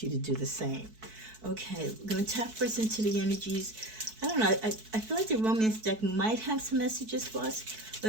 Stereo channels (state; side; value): late; left; 4.6 ms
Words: you to do the same. Okay, we're going to tap first into the energies. I don't know. I feel like the romance deck might have some messages for us.